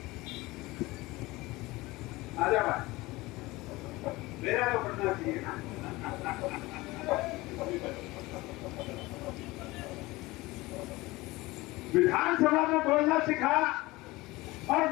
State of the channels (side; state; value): right; quieter; 20.7 dB